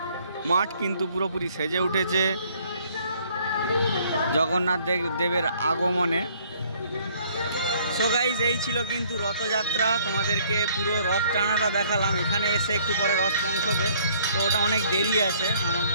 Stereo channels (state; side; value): inverted; both; correlation -0.60